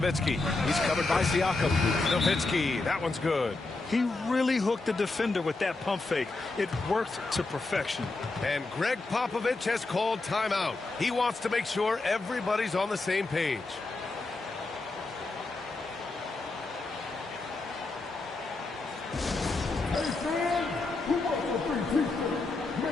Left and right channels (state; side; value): quieter; right; 3.4 dB